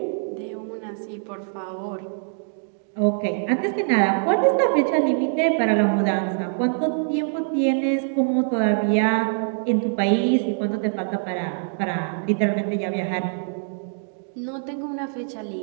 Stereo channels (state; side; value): silent; left; digital silence